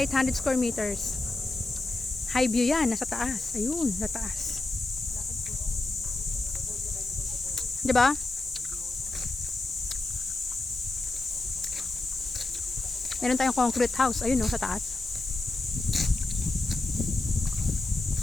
800 square meters. High view yan, nasa taas. Ayun, nasa taas. Diba? Meron tayong concrete house. Ayun, no, sa taas.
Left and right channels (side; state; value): right; quieter; 3.1 dB